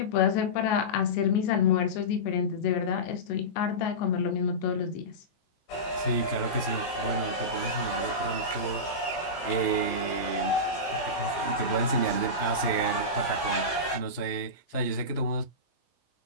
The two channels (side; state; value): right; late; 17 ms